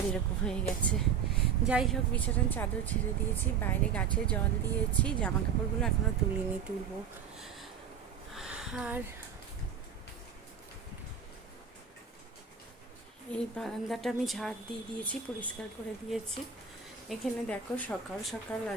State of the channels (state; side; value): quieter; left; 7.2 dB